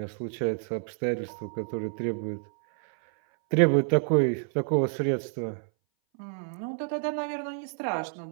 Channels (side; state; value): left; silent; 59 dB below the other